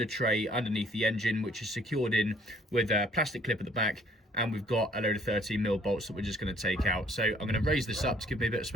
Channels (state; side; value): normal; both; correlation 0.60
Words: tray underneath the engine, which is secured in with a plastic clip at the back, and we've got a load of 13mm bolts that we're just going to take out. So I'm going to raise this up to give me a bit of